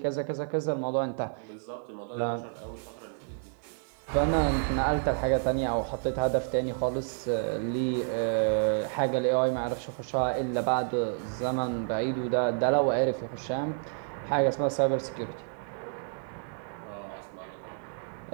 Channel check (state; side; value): silent; left; digital silence